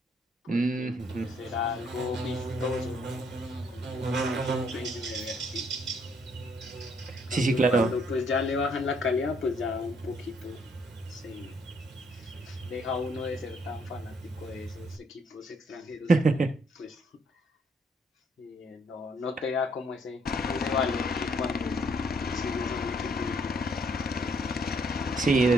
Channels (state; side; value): normal; both; correlation 0.68